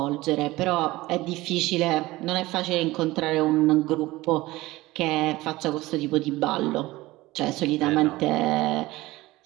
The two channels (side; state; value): left; quieter; 19.0 dB